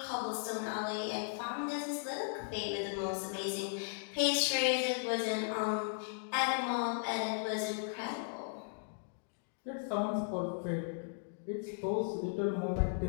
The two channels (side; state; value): right; silent; digital silence